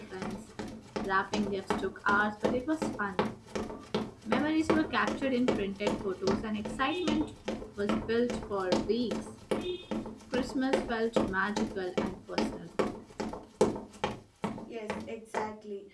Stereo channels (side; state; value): both; identical; correlation 1.00